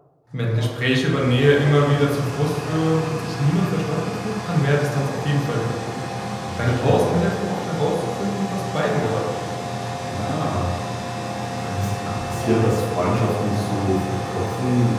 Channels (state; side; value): identical; both; correlation 1.00